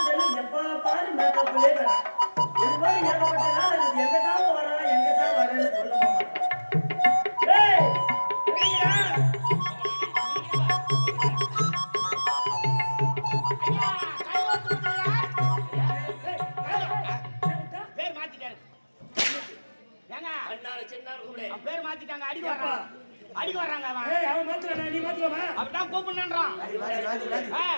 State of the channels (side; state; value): both; inverted; correlation -1.00